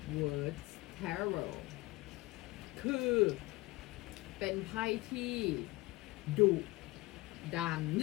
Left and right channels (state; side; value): quieter; right; 21.1 dB